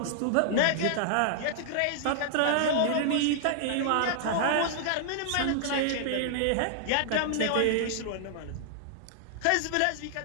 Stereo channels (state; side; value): different; both; correlation -0.01